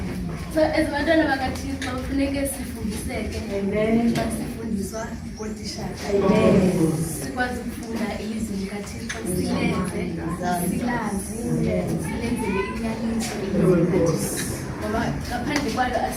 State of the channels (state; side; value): identical; both; correlation 1.00